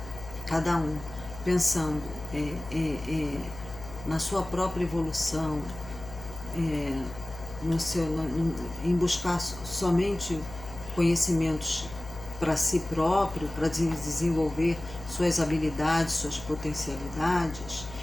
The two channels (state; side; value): noise; left; hum, 14 dB below the sound